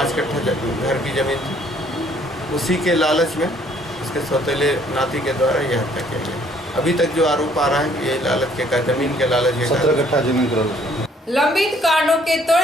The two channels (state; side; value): normal; both; correlation 0.62